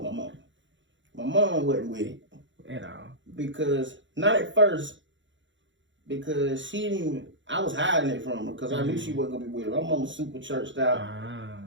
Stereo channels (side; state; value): left; late; 0.54 ms